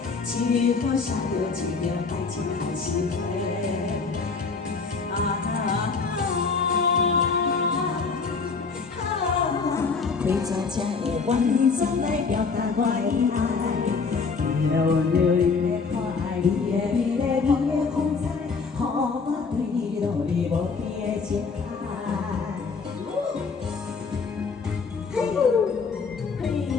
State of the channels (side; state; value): right; quieter; 4.8 dB